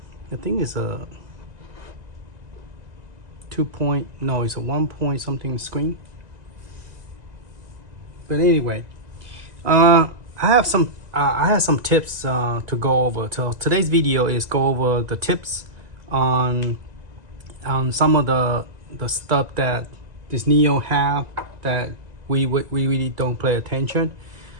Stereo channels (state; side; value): late; left; 2.0 ms